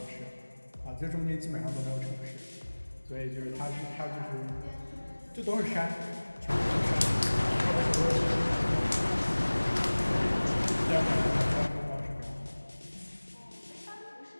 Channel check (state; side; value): inverted; both; correlation -1.00